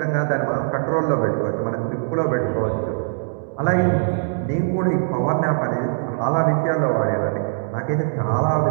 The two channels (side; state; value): left; silent; digital silence